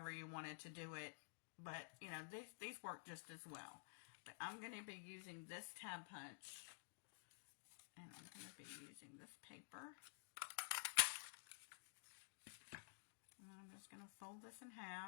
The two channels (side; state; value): right; silent; digital silence